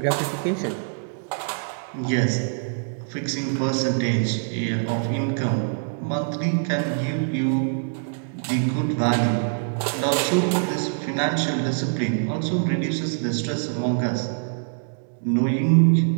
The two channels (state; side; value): silent; left; digital silence